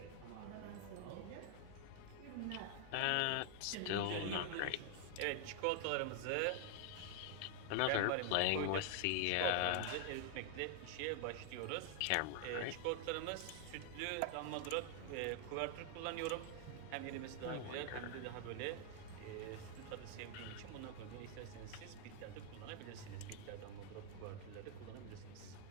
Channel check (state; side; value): different; both; correlation 0.00